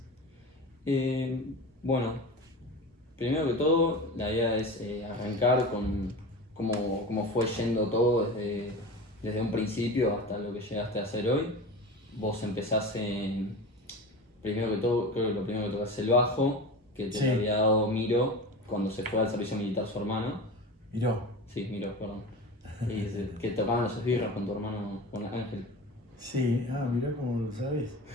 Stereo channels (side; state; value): both; normal; correlation 0.30